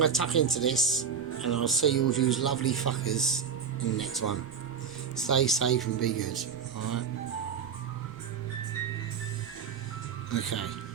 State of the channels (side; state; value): left; quieter; 6.7 dB